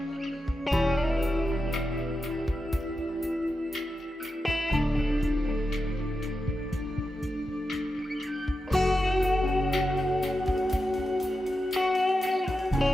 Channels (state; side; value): normal; both; correlation 0.89